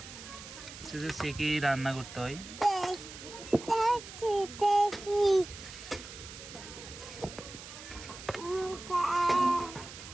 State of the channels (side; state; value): right; noise; hiss, 13 dB below the sound